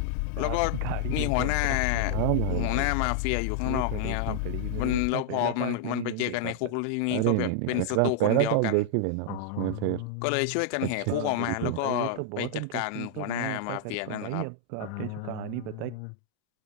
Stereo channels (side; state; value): both; different; correlation -0.01